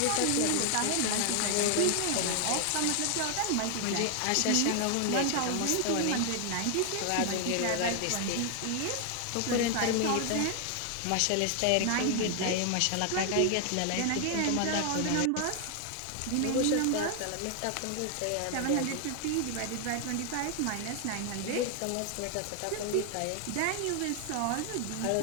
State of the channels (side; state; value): both; different; correlation 0.00